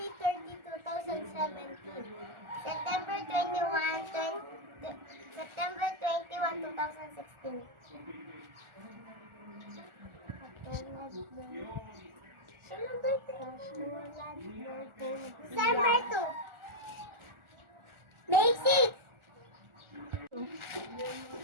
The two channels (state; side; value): late; left; 1.4 ms